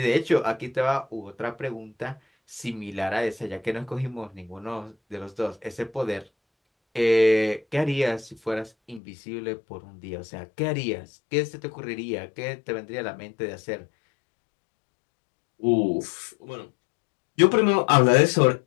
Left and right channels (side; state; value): right; drops out; at 9.0 s